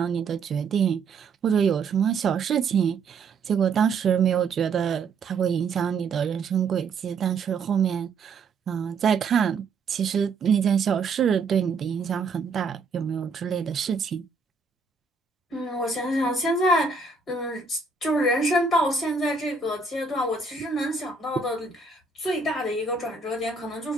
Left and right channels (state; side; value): quieter; left; 4.5 dB